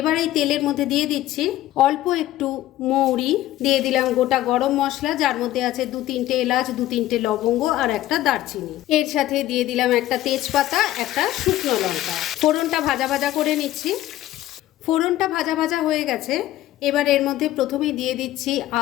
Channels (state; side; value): quieter; right; 14.6 dB